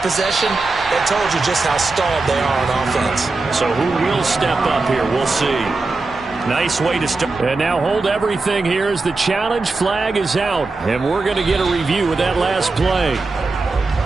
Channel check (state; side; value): quieter; left; 3.6 dB